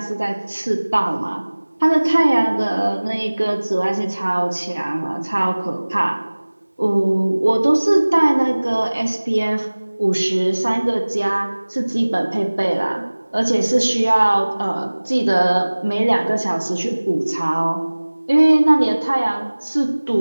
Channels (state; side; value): inverted; both; correlation -1.00